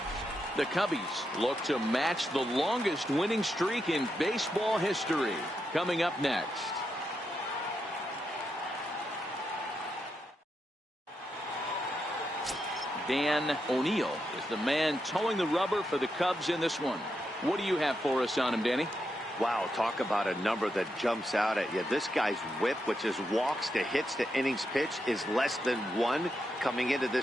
The Cubbies look to match the longest winning streak in baseball history. Coming up next. Dan O'Neill is the man towing the rubber for the Cubs in this one. What do you have for us on him, Danny? Wow, talk about a number that jumps out at you. This guy's whip, which is walks to hits to innings pitch, is less than 1 coming into this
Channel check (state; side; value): normal; both; correlation 0.84